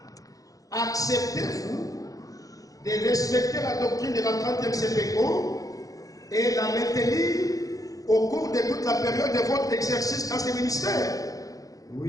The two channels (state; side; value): late; right; 0.17 ms